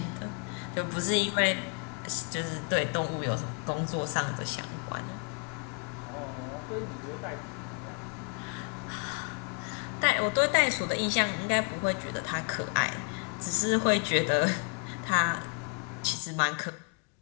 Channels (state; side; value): quieter; right; 37.3 dB